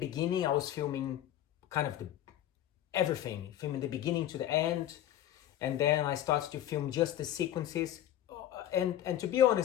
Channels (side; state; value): right; quieter; 12.0 dB